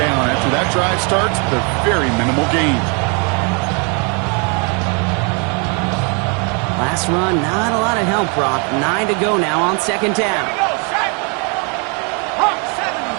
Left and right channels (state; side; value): quieter; left; 35.4 dB